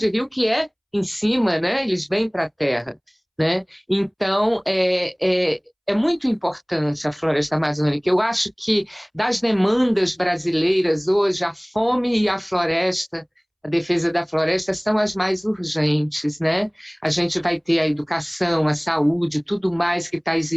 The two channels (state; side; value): identical; both; correlation 1.00